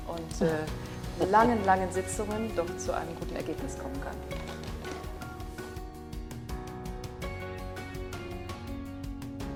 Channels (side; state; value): both; identical; correlation 1.00